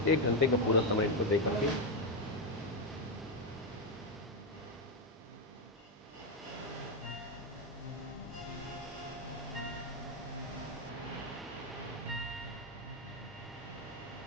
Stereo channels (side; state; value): both; normal; correlation 0.05